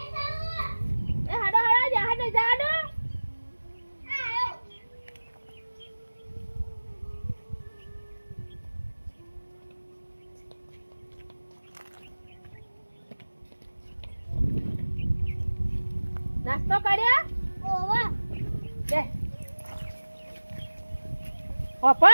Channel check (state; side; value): inverted; both; correlation -1.00